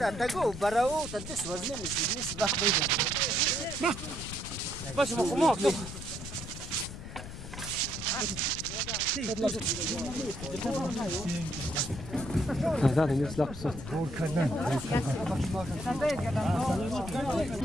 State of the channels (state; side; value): noise; left; rumble, 10 dB below the sound